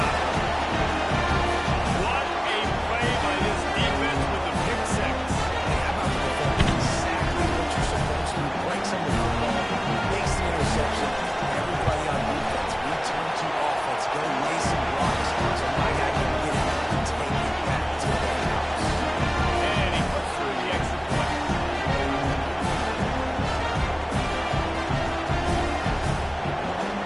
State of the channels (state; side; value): identical; both; correlation 1.00